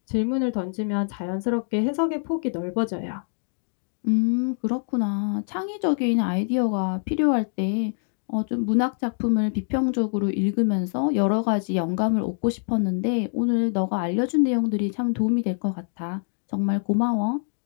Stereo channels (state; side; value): silent; right; digital silence